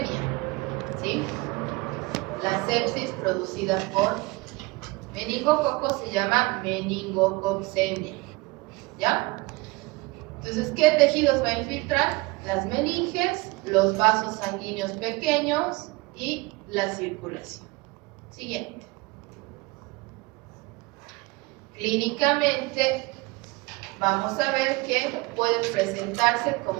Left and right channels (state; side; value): quieter; left; 23.9 dB